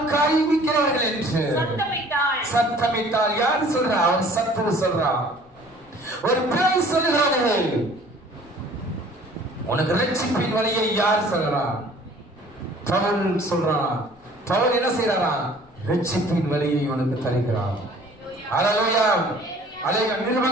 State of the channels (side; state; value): left; noise; rumble, 28 dB below the sound